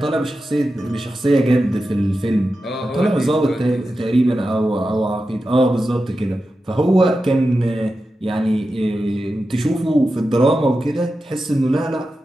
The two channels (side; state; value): both; normal; correlation 0.91